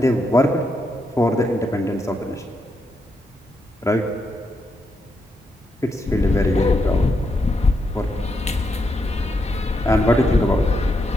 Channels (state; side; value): normal; both; correlation 0.81